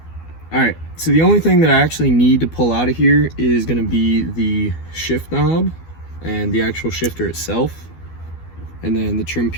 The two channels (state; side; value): late; right; 12 ms